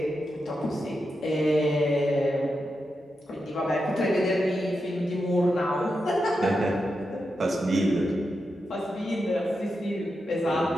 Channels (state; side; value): normal; both; correlation 0.87